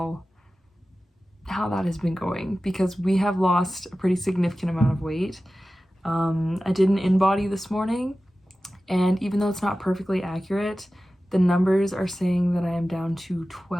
that has been going, because we have lost a pretty significant amount of weight. I did an in-body this morning, and even though it's not perfectly accurate, the numbers are saying that I am down to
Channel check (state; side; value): normal; both; correlation 0.95